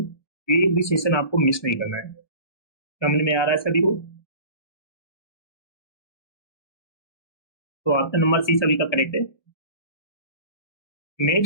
एक भी सेशन आपको मिस नहीं करना है। समझ में आ रहा है सभी को। तो ऑप्शन नंबर सी सभी का करेक्ट है।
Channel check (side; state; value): right; late; 1.2 ms